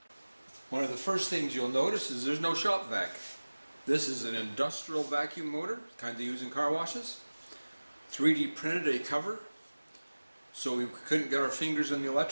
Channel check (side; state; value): both; inverted; correlation -1.00